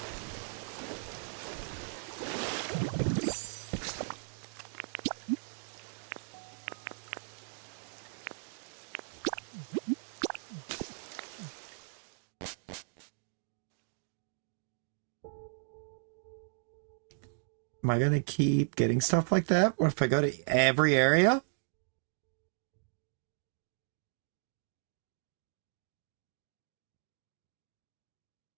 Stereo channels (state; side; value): silent; left; digital silence